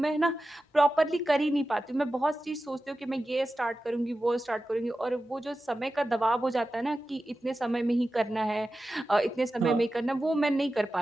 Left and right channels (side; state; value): both; normal; correlation 0.93